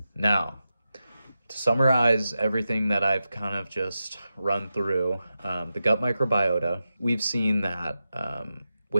Now, to summarize everything that I've kind of just run through, the gut microbiota, we've seen that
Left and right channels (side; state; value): both; inverted; correlation -0.90